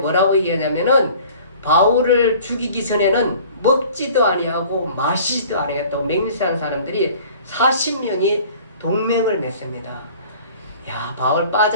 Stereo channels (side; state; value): both; inverted; correlation -0.48